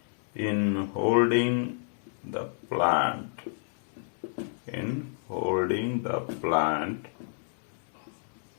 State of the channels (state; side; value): silent; right; 58 dB below the other